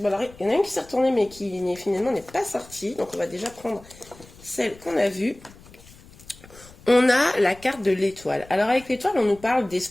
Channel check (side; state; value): left; noise; rumble, 22 dB below the sound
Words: alors il y en a une qui s'est retournée mais qui finalement n'est pas sortie. Donc on va déjà prendre celle qu'on a vue. On a la carte de l'étoile. Alors avec l'étoile, on nous parle